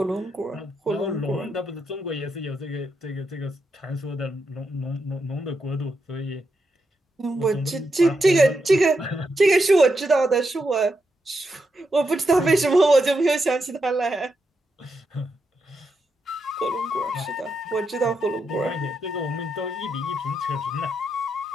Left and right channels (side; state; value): both; normal; correlation 0.83